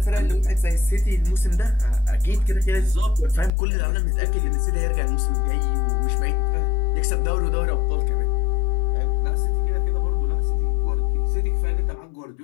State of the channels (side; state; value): right; drops out; at 3.5 s